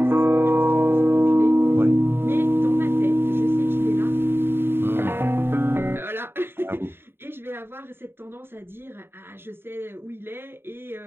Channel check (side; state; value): left; late; 0.11 ms